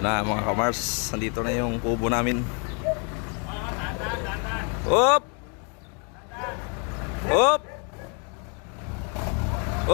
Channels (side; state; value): right; quieter; 37.2 dB